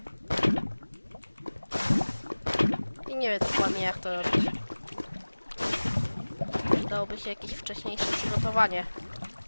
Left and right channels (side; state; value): both; inverted; correlation -1.00